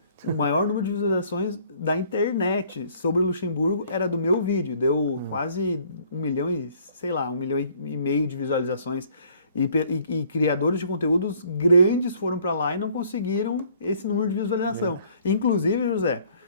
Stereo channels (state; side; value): inverted; both; correlation -0.59